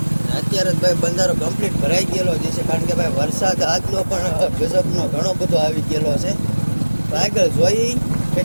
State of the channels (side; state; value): both; inverted; correlation -1.00